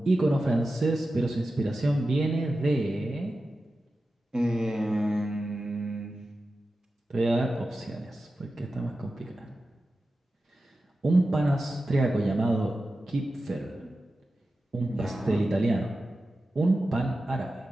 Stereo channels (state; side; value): normal; both; correlation 0.93